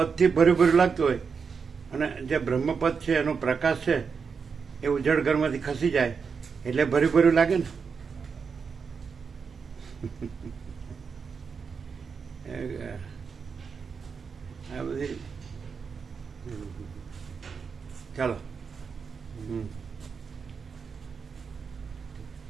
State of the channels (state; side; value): quieter; left; 5.7 dB